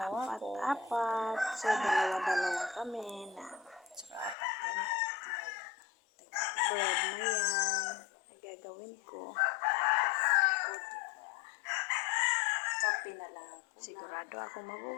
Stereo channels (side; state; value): right; drops out; at 4.4 s